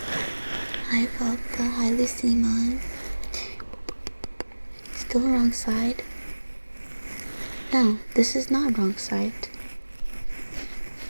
Hi, Volta. Hi, Lucimon. Still wrong side? No, this is not wrong side.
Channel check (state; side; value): inverted; both; correlation -1.00